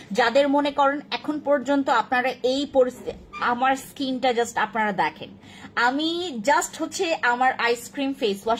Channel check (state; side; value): identical; both; correlation 1.00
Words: যাদের মনে করেন এখন পর্যন্ত আপনারা এই পরিস্থিতি, আমার স্কিনটা জাস্ট আপনারা দেখেন, আমি জাস্ট হচ্ছে আমার আইসক্রিম ফেস